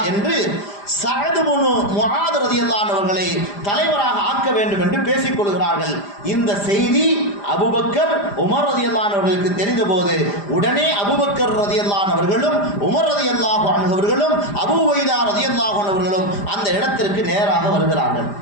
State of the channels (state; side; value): late; right; 5.0 ms